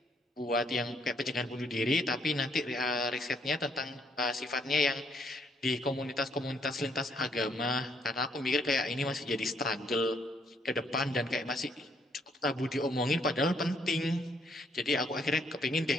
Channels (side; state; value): both; normal; correlation 0.70